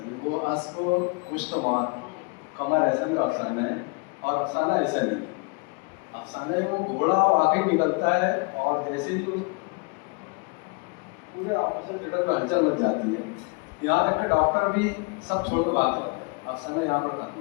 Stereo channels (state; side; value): quieter; right; 31.2 dB